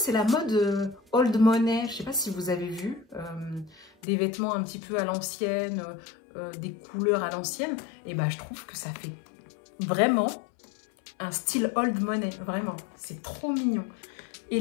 la mode old money. Je sais pas si vous avez vu des vêtements un petit peu à l'ancienne, des couleurs à l'ancienne. Et ben, je trouve que ça fait vraiment un style old money, vraiment, c'est trop mignon.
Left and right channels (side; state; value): right; drops out; at 3.9 s